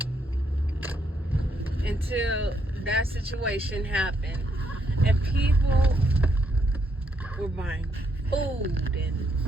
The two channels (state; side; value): normal; both; correlation 0.75